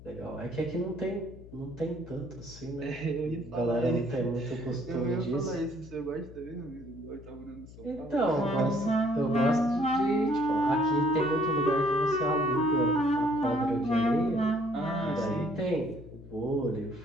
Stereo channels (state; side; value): noise; left; hum, 18 dB below the sound